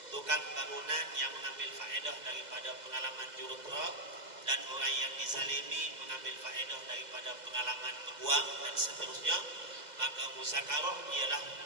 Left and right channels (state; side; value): late; left; 2.0 ms